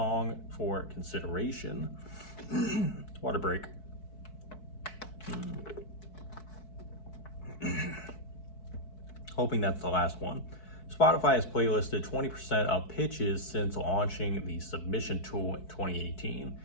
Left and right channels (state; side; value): late; right; 4.6 ms